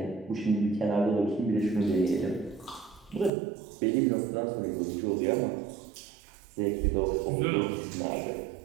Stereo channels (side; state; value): left; drops out; at 3.3 s